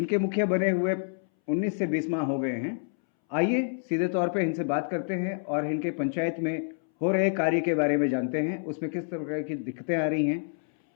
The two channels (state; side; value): silent; right; 59 dB below the other